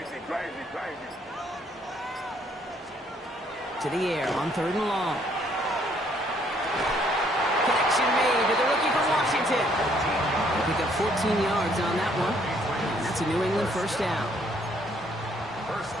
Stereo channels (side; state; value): both; normal; correlation 0.66